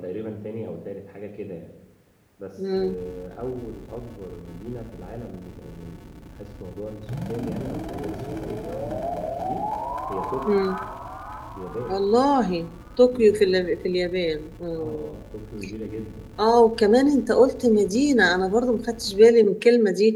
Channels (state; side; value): identical; both; correlation 1.00